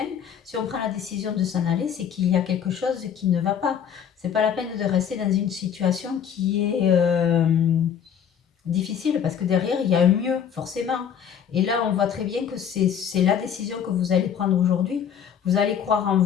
si on prend la décision de s'en aller, c'est qu'il y a quelque chose qui ne va pas. C'est pas la peine de rester dans une situation qui est difficile parce que derrière, il y a un mieux, forcément. Et là, on voit très bien que c'est la décision que vous allez prendre aujourd'hui. Vous allez croire en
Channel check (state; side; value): quieter; right; 8.3 dB